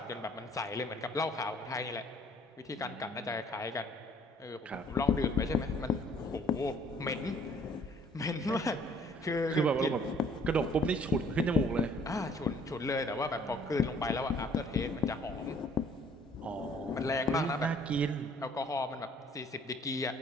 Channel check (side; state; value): both; normal; correlation 0.59